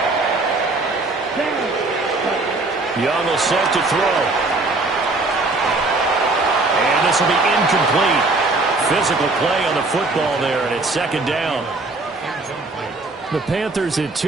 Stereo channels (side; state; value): left; quieter; 3.2 dB